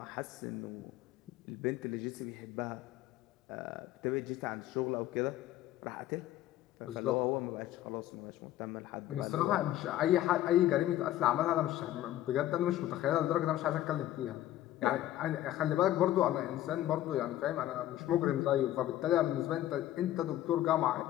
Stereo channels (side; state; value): right; quieter; 13.7 dB